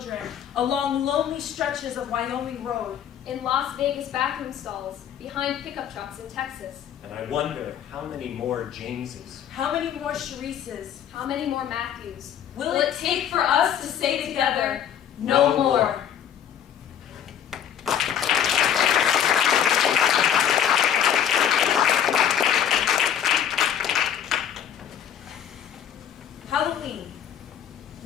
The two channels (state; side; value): quieter; right; 9.4 dB